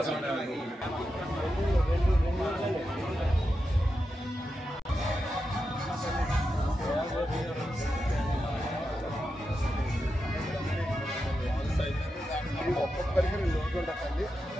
ఒక్కొక్కరికి 2 ఓట్లు ఉంటాయండి.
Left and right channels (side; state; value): both; normal; correlation 0.88